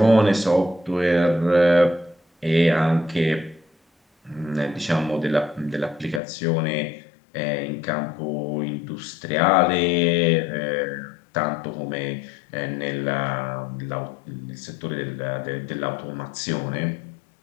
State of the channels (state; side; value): drops out; right; at 6.2 s